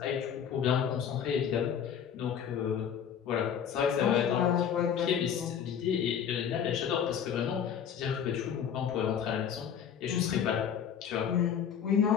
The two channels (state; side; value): quieter; right; 8.3 dB